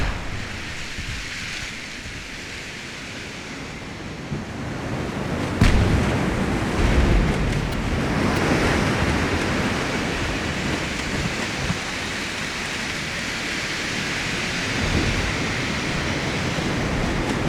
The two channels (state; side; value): identical; both; correlation 1.00